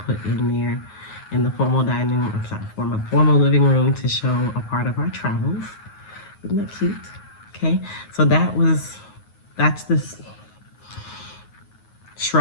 put in there in the formal dining room, formal living room to show a part of our travels. Isn't that cute? Okay, so that's this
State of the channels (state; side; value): late; right; 9.5 ms